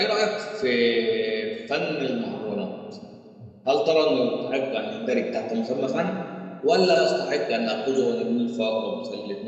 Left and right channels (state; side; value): identical; both; correlation 1.00